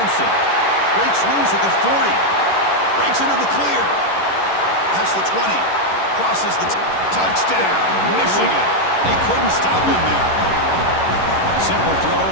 Breaks loose at the 40. Breaks into the clear. Past the 20. Crosses the touchdown. Michigan. They couldn't stop him there. Simple throw,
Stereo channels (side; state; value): right; late; 11 ms